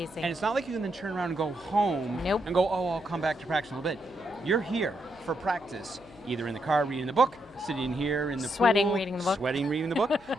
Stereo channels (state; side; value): noise; left; hum, 26 dB below the sound